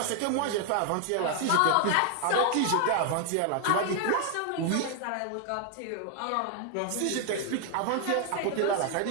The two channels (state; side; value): different; both; correlation 0.00